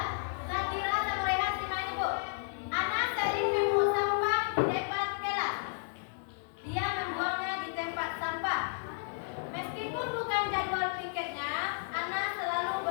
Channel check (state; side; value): silent; right; 56 dB below the other